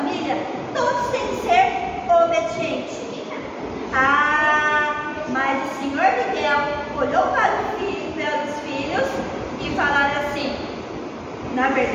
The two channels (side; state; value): both; identical; correlation 1.00